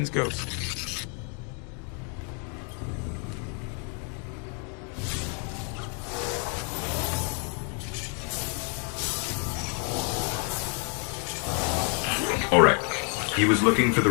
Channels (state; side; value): quieter; right; 39.4 dB